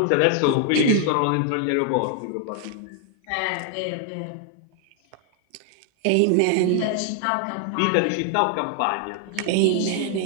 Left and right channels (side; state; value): both; different; correlation 0.00